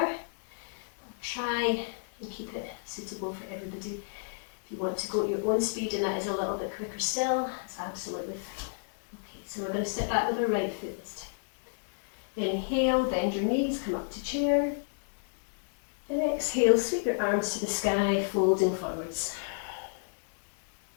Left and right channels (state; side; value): silent; right; digital silence